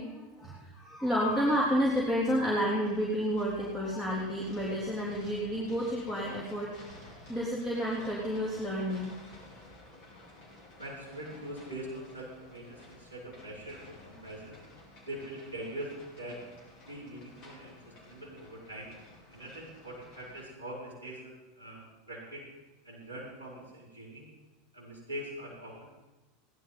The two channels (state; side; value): normal; both; correlation 0.50